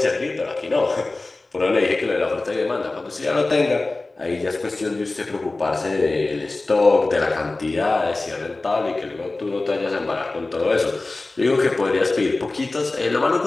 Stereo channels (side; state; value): right; quieter; 3.2 dB